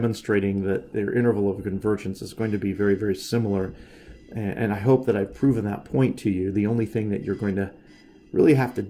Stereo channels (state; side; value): identical; both; correlation 1.00